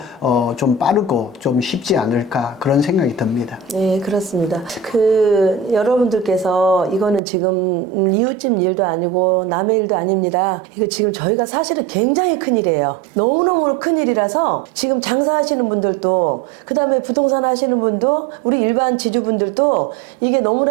좀 빠르고 좀 쉽지 않을까 그런 생각이 듭니다. 네, 그렇습니다. 여러분들께서 이거는 지금 이웃집 일도 아니고 남의 일도 아닙니다. 이거 지금 저희가 사실은 굉장히 큰일이에요. 너무너무 큰일이라서 지금 장사하시는 분들도 그 다음에 부동산 하시는 분도 우리 일반 지주분들도 이게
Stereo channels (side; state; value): left; drops out; at 7.2 s